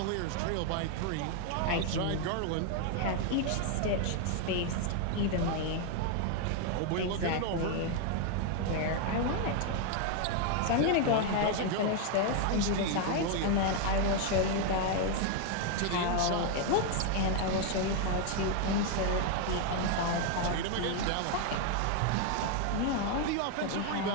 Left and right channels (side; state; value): both; different; correlation 0.00